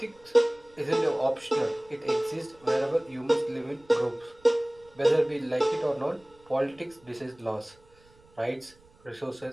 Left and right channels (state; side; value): noise; right; rumble, 29 dB below the sound